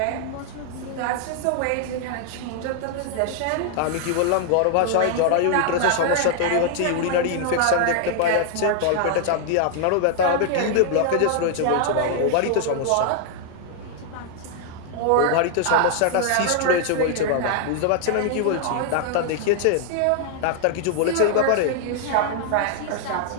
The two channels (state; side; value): different; both; correlation 0.00